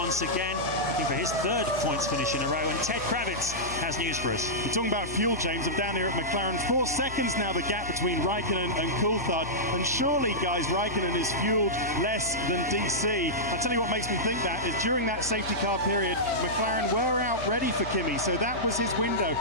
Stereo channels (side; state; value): left; noise; hum, 13 dB below the sound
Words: again, looking for his 3rd points finish in a row. And Ted Kravitz has news for us. We're talking about fuel, James. I'm down here at McLaren. 4 seconds now, the gap between Raikkonen and Coulthard. And surely, guys, Raikkonen is fueled less than DC. I'll tell you what makes me think that is during that safety car period, McLaren were out ready for Kimi. So that was his window.